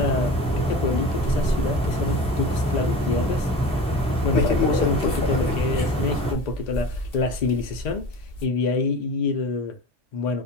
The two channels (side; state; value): both; normal; correlation 0.34